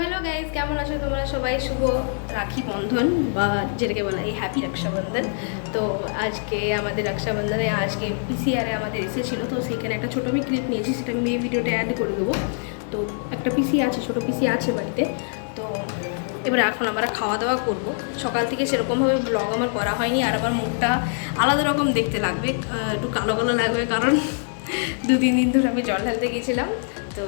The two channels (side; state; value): right; silent; 63 dB below the other